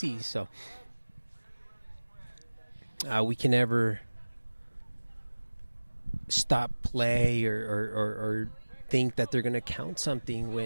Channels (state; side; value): inverted; both; correlation -1.00